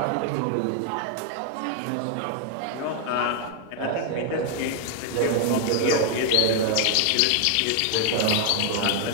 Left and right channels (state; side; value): different; both; correlation 0.00